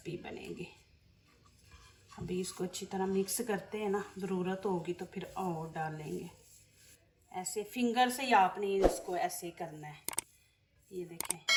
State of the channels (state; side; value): identical; both; correlation 1.00